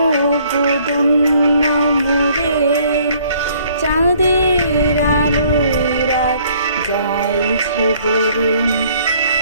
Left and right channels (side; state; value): both; inverted; correlation -0.60